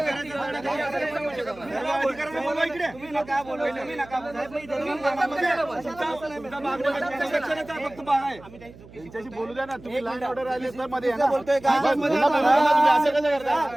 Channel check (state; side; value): noise; right; hum, 20 dB below the sound